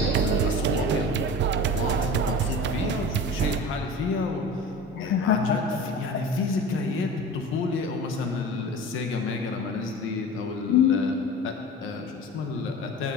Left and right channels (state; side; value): normal; both; correlation 0.35